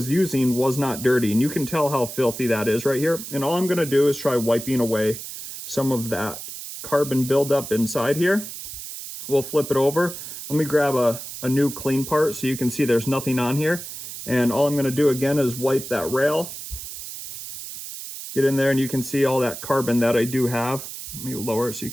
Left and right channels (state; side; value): noise; right; hiss, 10 dB below the sound